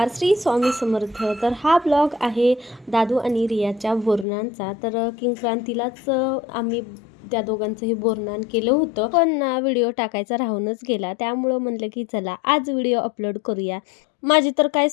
श्री स्वामी समर्थ. तर हा ब्लॉग आहे दादू आणि रियाच्या बोरनांचा. तर किंक्रांतीलाच आम्ही त्या दोघांचंही बोरनान केलं होतं. पण ना व्हिडिओ टाकायचा राहूनच गेला. त्यामुळं म्हणलं की चला आज व्हिडिओ अपलोड करूया. माझी तर काही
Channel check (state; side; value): drops out; right; at 4.2 s